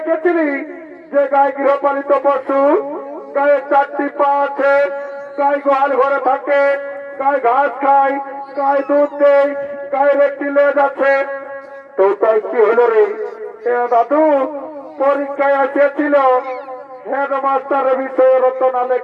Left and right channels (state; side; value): identical; both; correlation 1.00